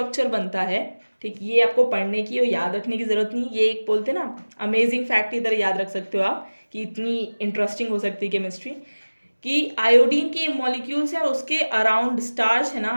बनता है, ठीक। ये आपको पढ़ने की और याद रखने की ज़रूरत नहीं, ये एक बोलते ना अमेजिंग फैक्ट की तरह याद रख सकते हो आप कि इतनी इंटरेस्टिंग हो सकती है केमिस्ट्री, कि आयोडीन के मॉलिक्यूल्स है उसके अराउंड स्टार्च है ना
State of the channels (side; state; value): both; inverted; correlation -1.00